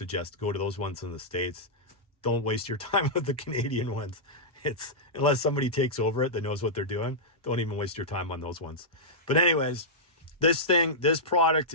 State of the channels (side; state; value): both; normal; correlation -0.11